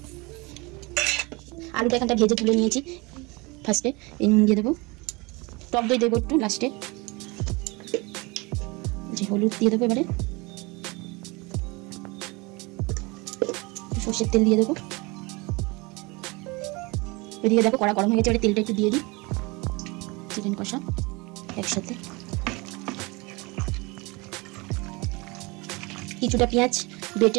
আলুটা এখানটা ভেজে তুলে নিয়েছি। ফার্স্টে এই নুন দিয়ে দেবো, টক দই দেবো একটু লাস্টে, যে হলুদ দিয়ে দেবো। এবারে সর্ষের তেল দিয়ে দেবো। এদিকে দেখো কড়া গরম হয়ে গেছে, এবারে তেলটা একটু দিয়ে দিই। চিকেন কষা একসাথে, কিছুটা পেঁয়াজ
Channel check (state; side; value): quieter; left; 25.9 dB